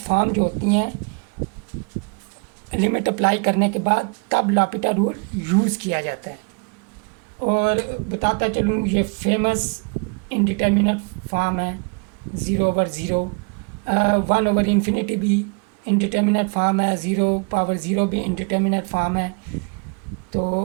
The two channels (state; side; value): quieter; left; 34.5 dB